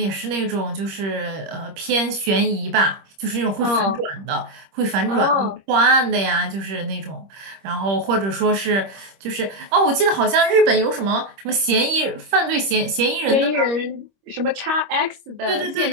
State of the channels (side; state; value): left; late; 25 ms